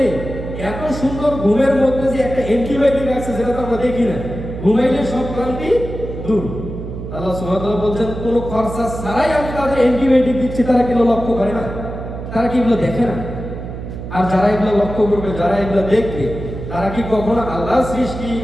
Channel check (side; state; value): right; noise; hum, 8 dB below the sound